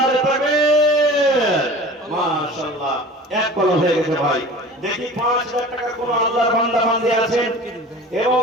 তাকবীর, মাশাআল্লাহ। এক কলম হয়ে গেছে ভাই। দেখি 5,000 টাকা কোন আল্লাহর বান্দা বান্দি আছেন? এবং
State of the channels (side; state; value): both; normal; correlation 0.40